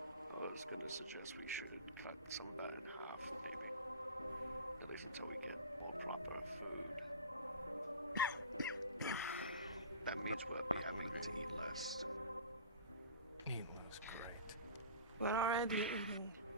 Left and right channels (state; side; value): inverted; both; correlation -0.37